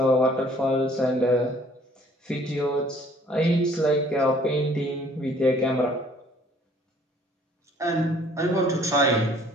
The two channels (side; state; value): both; normal; correlation 0.58